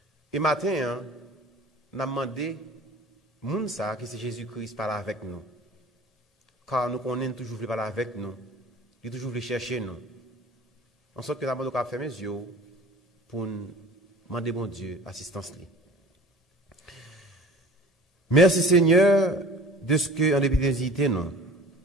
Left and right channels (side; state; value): both; normal; correlation 0.44